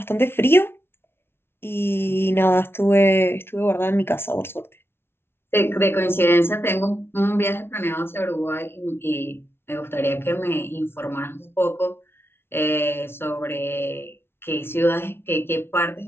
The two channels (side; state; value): right; late; 0.12 ms